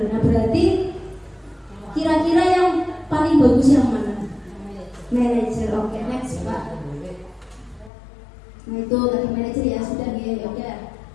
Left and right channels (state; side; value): drops out; right; at 7.9 s